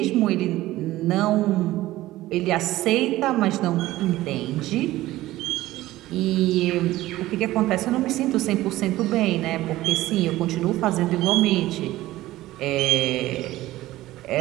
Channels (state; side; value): quieter; left; 16.4 dB